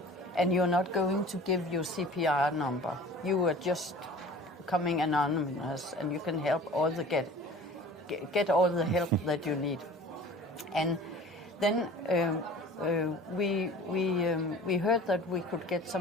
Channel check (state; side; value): normal; both; correlation 0.43